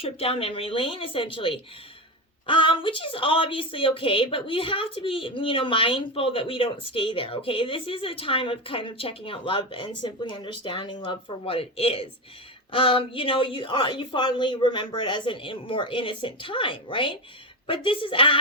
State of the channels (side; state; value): both; normal; correlation 0.16